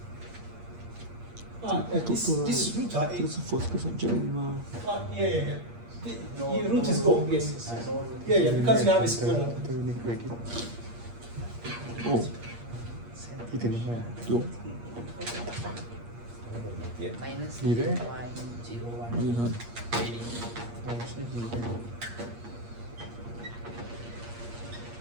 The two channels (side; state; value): left; late; 8.5 ms